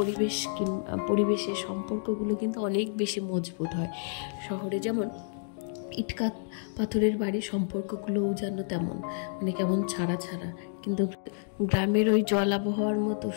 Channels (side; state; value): right; silent; digital silence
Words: পরিবেশের সম্পর্কগুলো কিন্তু অনেক বেশি মজবুত হয়। শহরে যেমন ইটকাট পাথরের বাড়ির সম্পর্কগুলোও যেন তেমন কেমন ছাড়া ছাড়া, কিন্তু গ্রামের ওই জল আবহাওয়ার মতো